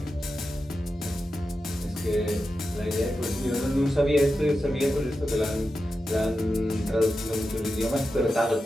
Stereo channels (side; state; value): both; normal; correlation 0.90